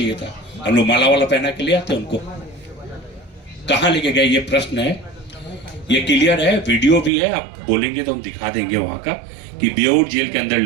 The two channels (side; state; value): left; drops out; at 7.1 s